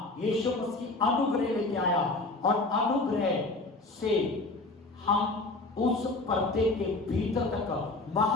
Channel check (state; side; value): quieter; right; 3.1 dB